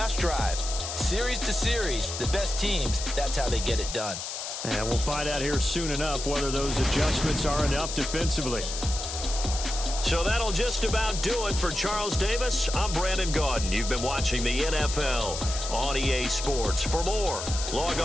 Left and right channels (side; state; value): left; noise; hiss, 6 dB below the sound